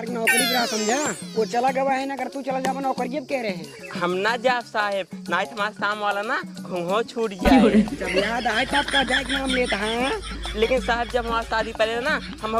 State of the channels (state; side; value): identical; both; correlation 1.00